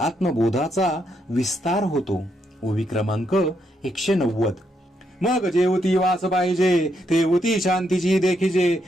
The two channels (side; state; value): both; normal; correlation 0.78